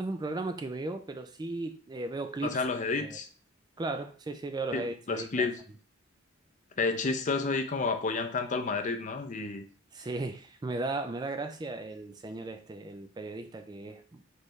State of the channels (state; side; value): normal; both; correlation 0.32